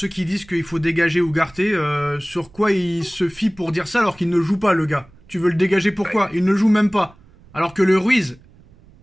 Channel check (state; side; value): noise; right; rumble, 26 dB below the sound